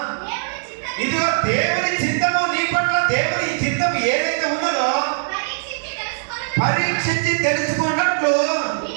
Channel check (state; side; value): silent; left; digital silence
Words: ఇదిగో దేవుని చిత్తము నీ పట్ల దేవుని చిత్తము ఏదైతే ఉన్నదో పరీక్షించి తెలుసుకున్నట్లు